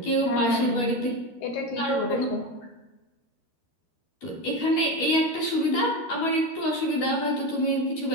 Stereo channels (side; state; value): right; late; 12 ms